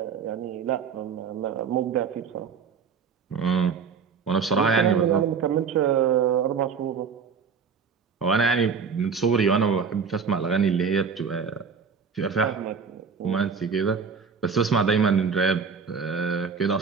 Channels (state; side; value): quieter; left; 5.9 dB